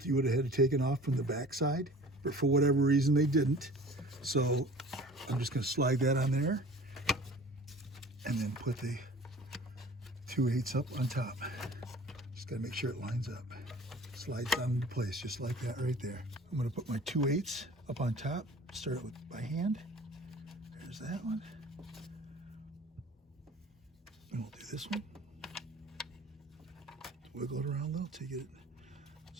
you would have had it taken off from the back side. But for whatever reason they didn't. So I'm just going to slide that on there. And then put the 2/8 up on top. Just got to make sure it lines up. Slides down into place just like that right there. I'm going to put my 2/8 up on top. Start it with by hand. There's that one. And we'll do this one. wiggle it around a little till you get it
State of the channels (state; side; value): normal; both; correlation 0.45